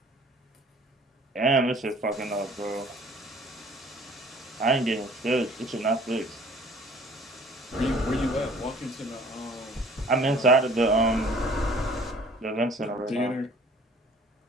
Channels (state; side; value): normal; both; correlation 0.52